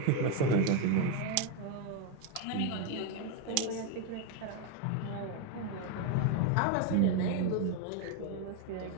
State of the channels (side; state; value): both; different; correlation 0.02